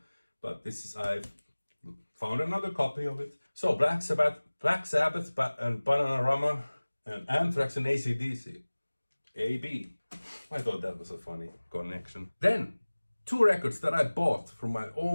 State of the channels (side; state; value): both; inverted; correlation -1.00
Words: But this is, I found another copy of it. So Black Sabbath and Bananarama, and Anthrax and AC/DC. AB. I thought that was a funny connection. Then, 2 records that I bought from my